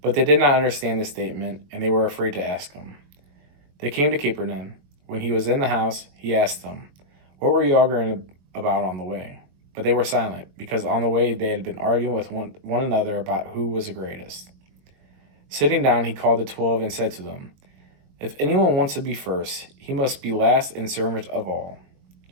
But they did not understand this statement, and they were afraid to ask him. They came to Capernaum. When he was in the house, he asked them, "What were you arguing about on the way?" But they were silent, because on the way they had been arguing with one another about who was the greatest. Sitting down, he called the 12 and said to them, "If anyone wants to be first, he must be last and servant of all."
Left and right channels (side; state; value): left; late; 21 ms